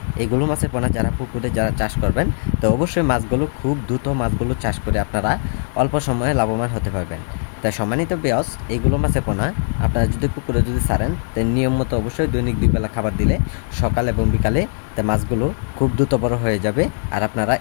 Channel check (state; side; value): silent; right; digital silence